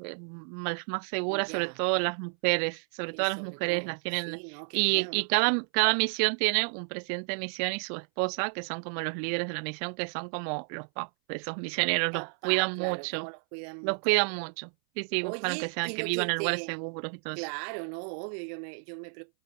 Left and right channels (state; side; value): silent; left; 58 dB below the other